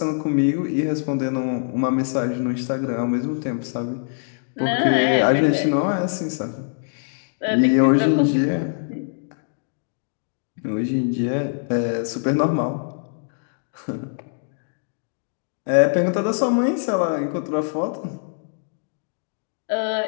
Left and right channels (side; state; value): right; silent; digital silence